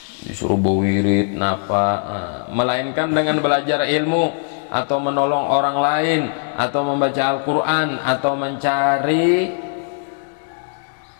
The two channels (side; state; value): right; silent; digital silence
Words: disuruh bawirid napa, melainkan dengan belajar ilmu atau menolong orang lain atau membaca Al-Quran atau mencari